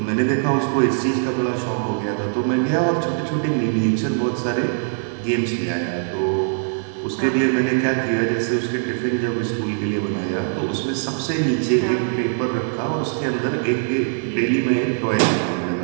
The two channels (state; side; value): silent; left; digital silence